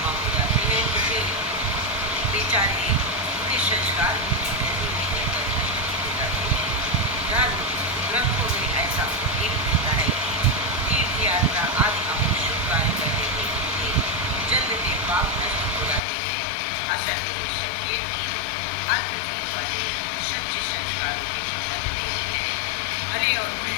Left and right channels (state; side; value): drops out; right; at 16.0 s